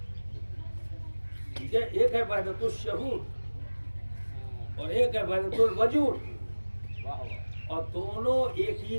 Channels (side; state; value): both; inverted; correlation -1.00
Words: ٹھیک ہے؟ ایک ہے وحدت الشہود اور ایک ہے وحدت الوجود، اور دونوں ایک ہی